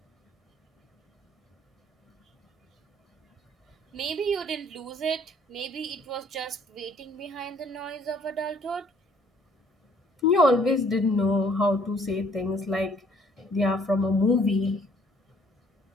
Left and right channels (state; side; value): normal; both; correlation 0.61